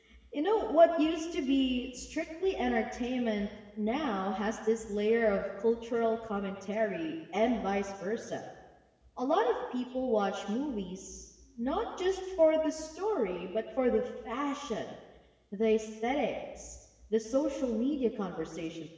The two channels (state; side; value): identical; both; correlation 1.00